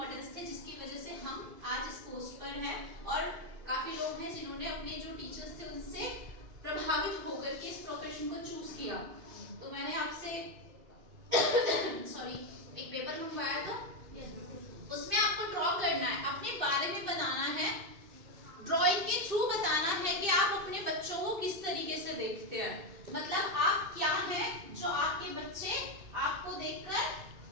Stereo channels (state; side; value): late; left; 2.6 ms